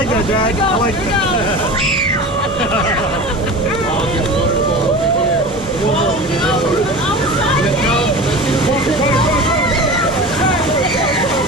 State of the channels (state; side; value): noise; left; hum, 16 dB below the sound